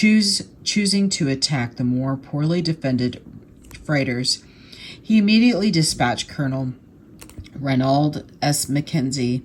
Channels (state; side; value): identical; both; correlation 1.00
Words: to attack the more poorly defended freighters. He immediately dispatched Colonel Reynold S. McKenzie,